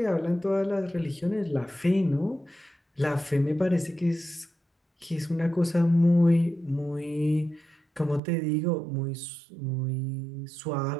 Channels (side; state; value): left; drops out; at 8.2 s